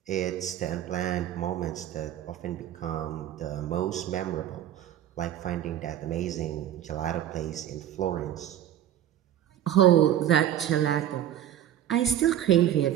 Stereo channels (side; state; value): left; quieter; 11.3 dB